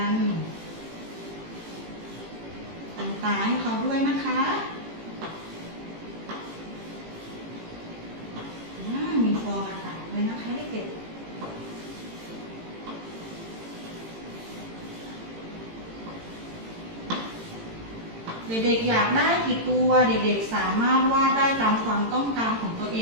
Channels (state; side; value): late; left; 18 ms